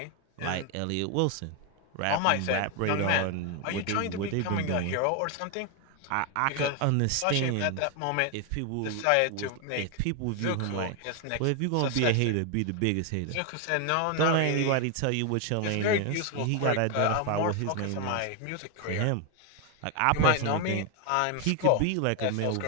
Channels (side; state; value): both; different; correlation 0.01